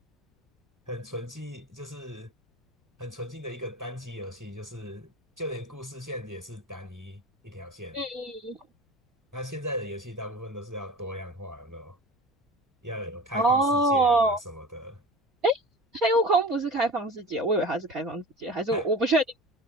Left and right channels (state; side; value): normal; both; correlation 0.36